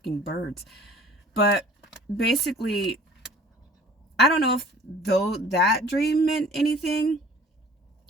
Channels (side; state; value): both; normal; correlation 0.50